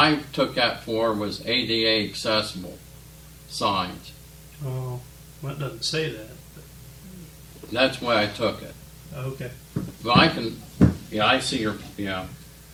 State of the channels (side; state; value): both; identical; correlation 1.00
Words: took that for was ADA accessible signs. Oh, well, it doesn't say that. That's why I took it. Okay. But I see your,